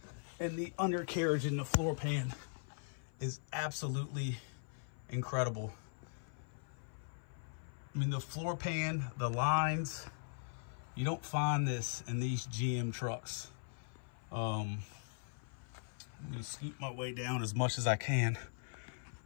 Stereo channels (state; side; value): silent; right; 51 dB below the other